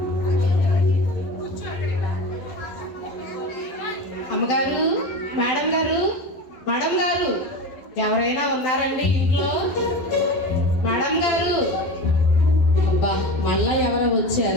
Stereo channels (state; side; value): late; right; 11 ms